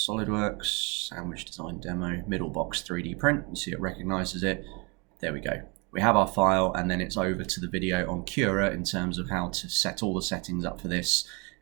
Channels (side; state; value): left; quieter; 30.4 dB